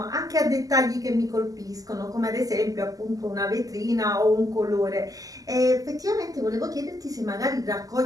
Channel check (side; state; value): left; late; 0.17 ms